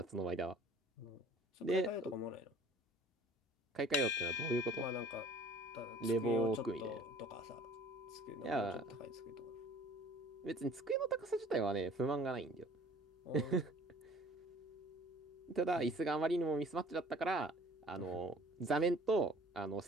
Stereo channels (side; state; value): both; normal; correlation 0.51